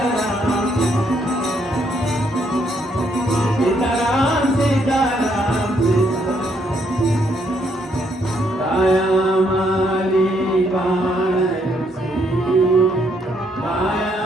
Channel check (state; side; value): normal; both; correlation 0.72